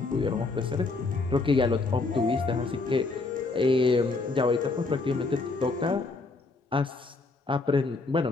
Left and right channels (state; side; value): quieter; right; 3.7 dB